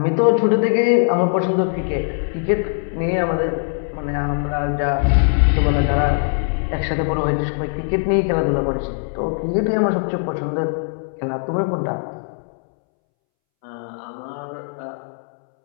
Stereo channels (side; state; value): right; silent; 65 dB below the other